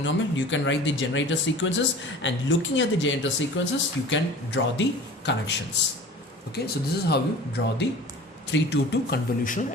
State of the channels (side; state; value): both; normal; correlation 0.42